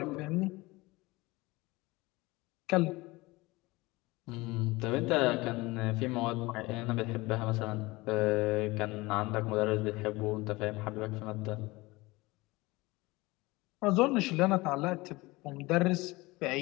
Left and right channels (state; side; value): quieter; right; 21.9 dB